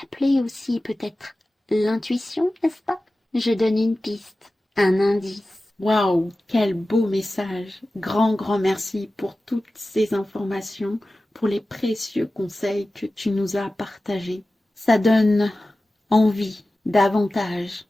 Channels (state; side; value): normal; both; correlation 0.95